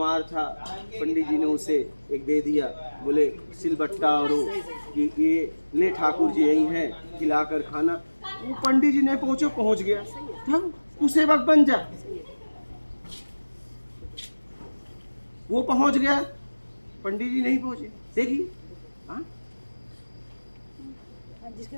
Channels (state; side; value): inverted; both; correlation -1.00